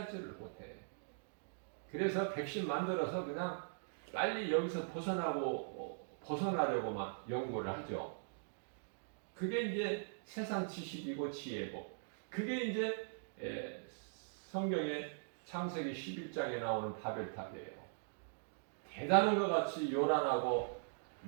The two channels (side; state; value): left; silent; digital silence